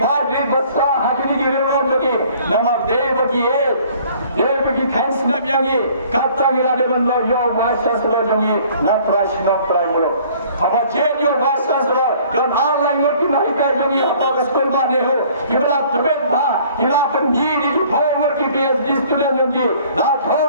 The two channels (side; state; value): both; inverted; correlation -0.55